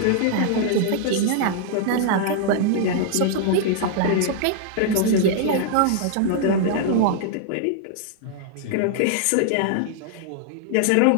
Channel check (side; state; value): both; different; correlation -0.01